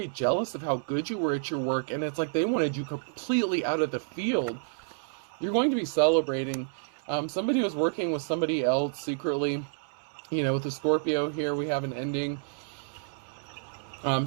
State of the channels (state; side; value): silent; left; 58 dB below the other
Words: jealous of how good you were at your work, and it's like they wanted you completely out of the field. You're going to be celebrating. Somebody was working with somebody else secretly. You know, with the Scorpio here, we have an ending.